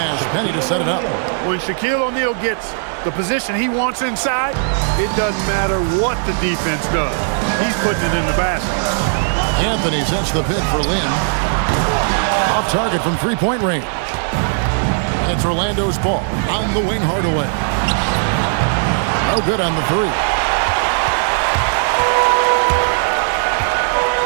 Penny to set it up. When Shaquille O'Neal gets the position he wants inside, it doesn't matter what the defense does. He's putting it in the basket. Anthony sets the pick for Lynn. Off target from three-point range. And it's Orlando's ball. On the wing, Hardaway. No good on the three.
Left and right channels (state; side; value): silent; left; digital silence